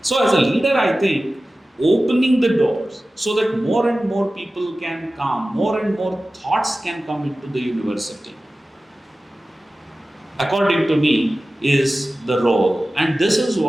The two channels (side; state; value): both; normal; correlation 0.96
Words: So as a leader, I think opening the doors so that more and more people can come, more and more thoughts can come into the university, according to me, is the role. And this is